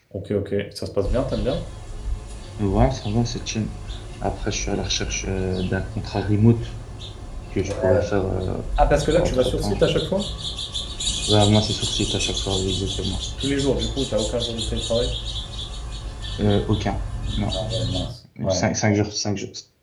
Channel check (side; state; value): both; identical; correlation 1.00